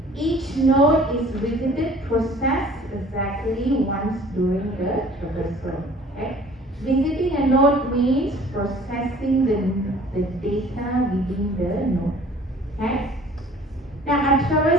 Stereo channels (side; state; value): both; normal; correlation 0.51